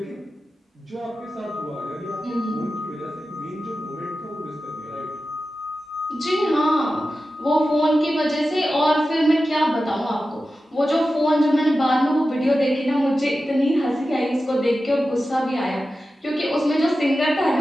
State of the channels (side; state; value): both; normal; correlation 0.93